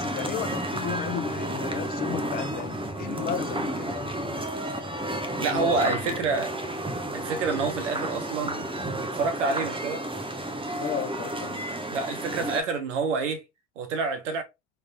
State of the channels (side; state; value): both; normal; correlation 0.26